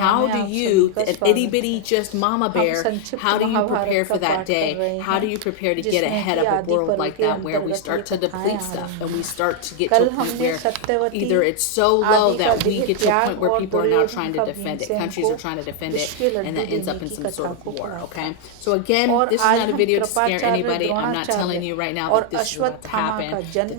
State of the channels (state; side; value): different; both; correlation 0.00